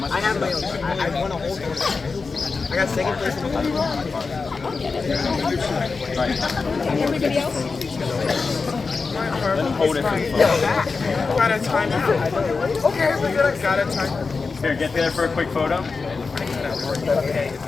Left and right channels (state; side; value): quieter; right; 4.5 dB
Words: I have my own. I want to hold it. I got second place in the final. Everybody else? Hold it for the photo. Got a timeout. Okay, we're good. Got a timeout. Here, get there for a quick photo.